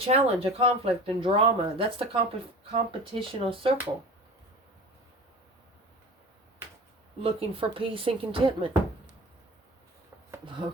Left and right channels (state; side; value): normal; both; correlation 0.37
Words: a conflict, and drama. That's the competitional circle. Looking for peace and contentment.